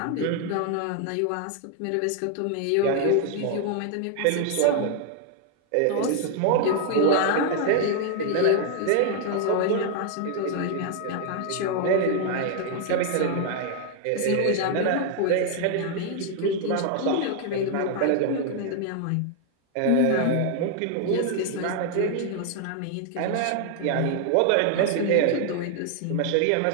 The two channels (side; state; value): both; different; correlation 0.00